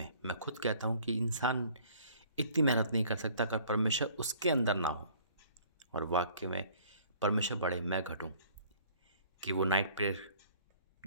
मैं खुद कहता हूँ कि इंसान इतनी मेहनत नहीं कर सकता अगर परमेश्वर उसके अंदर ना हो। और वाक्य में परमेश्वर बढ़े मैं घटूँ, कि वो नाइट प्रेयर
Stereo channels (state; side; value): inverted; both; correlation -0.55